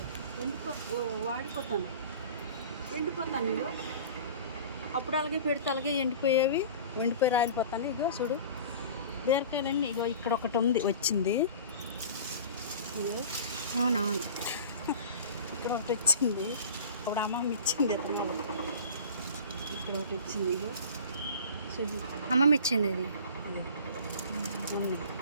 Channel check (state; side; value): inverted; both; correlation -0.40